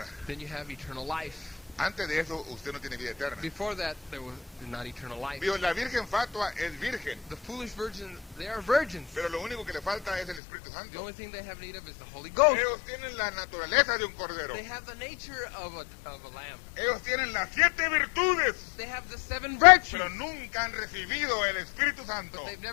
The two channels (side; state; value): right; drops out; at 10.4 s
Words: Then you have eternal life. Antes de eso usted no tiene vida eterna. Before that, there was not eternal life. Vio, la virgen fatua es virgen, The foolish virgins, they are virgins. pero lo único que le falta es el Espíritu The Santo. only thing they have need of is the Holy Ghost. Ellos tienen la naturaleza de un cordero. They have the nature of a lamb. Ellos tienen las 7 virtudes, They have the 7 virtues, pero nunca han recibido el Espíritu Santo. but they've